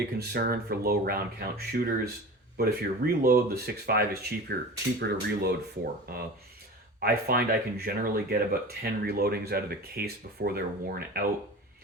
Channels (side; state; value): both; normal; correlation 0.34